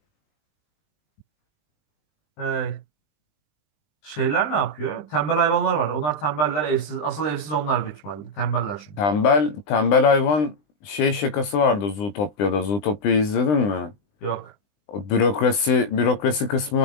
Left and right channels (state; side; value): late; right; 20 ms